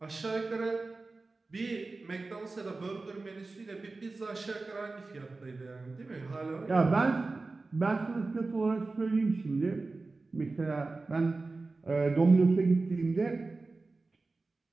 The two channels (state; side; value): quieter; left; 3.6 dB